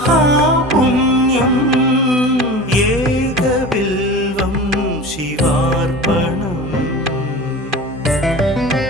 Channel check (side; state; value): both; normal; correlation 0.34